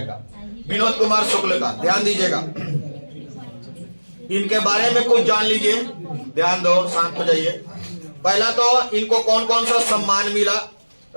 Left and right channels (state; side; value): inverted; both; correlation -1.00